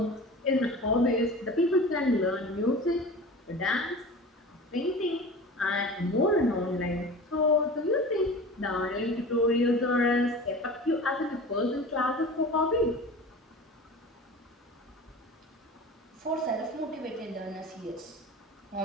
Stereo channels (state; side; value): normal; both; correlation 0.36